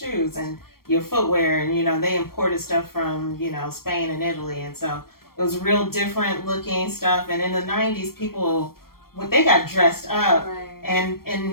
and your footwear, and you know they imported stuff from Spain and Italy, and so it was real different looking stuff. And in the '90s, people when they got dressed up, Right.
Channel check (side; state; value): right; late; 0.93 ms